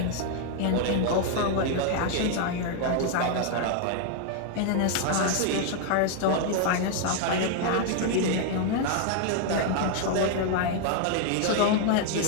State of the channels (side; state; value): both; different; correlation 0.00